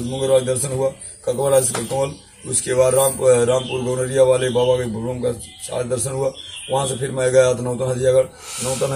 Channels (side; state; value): both; identical; correlation 1.00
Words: दर्शन हुआ ककवल ककवल। उसके बाद रामपुर गौनरिया वाले बाबा के भवन का साथ दर्शन हुआ। वहाँ से फिर मैं गया तो नौतन हजियागढ़